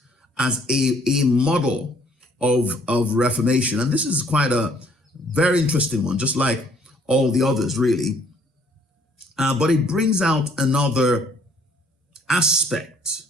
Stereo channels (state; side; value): normal; both; correlation 0.62